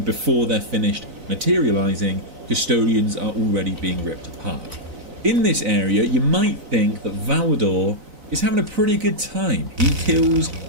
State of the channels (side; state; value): left; late; 4.0 ms